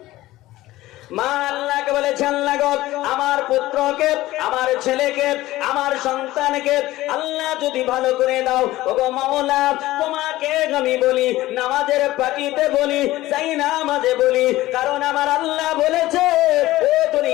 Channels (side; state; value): right; quieter; 16.8 dB